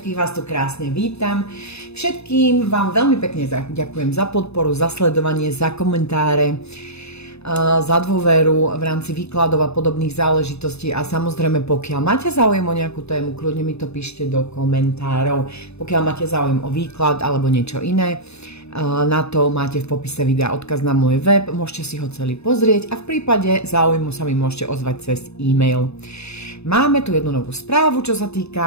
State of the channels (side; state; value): right; late; 0.80 ms